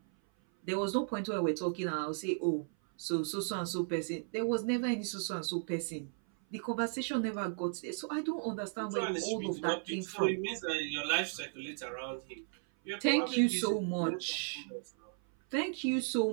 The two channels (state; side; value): silent; left; 54 dB below the other